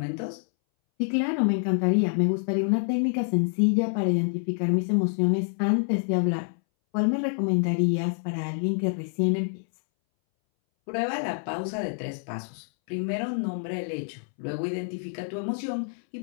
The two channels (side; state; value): right; silent; 60 dB below the other